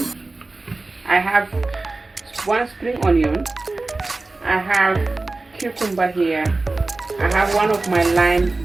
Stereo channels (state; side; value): quieter; left; 3.3 dB